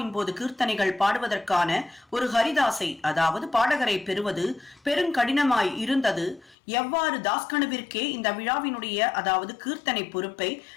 போது கீர்த்தனைகள் பாடுவதற்கான ஒரு ஹரிதாசை, அதாவது பாடகரை பெறுவது பெருங்கடினமாய் இருந்தது, எவ்வாறு தாஸ்கனுவிற்கே இந்த விழாவினுடைய அதாவது கீர்த்தனை பொறுப்பை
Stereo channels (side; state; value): right; drops out; at 6.6 s